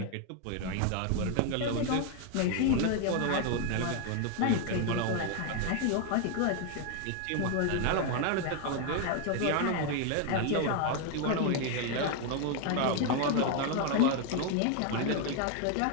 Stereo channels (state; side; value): different; both; correlation 0.01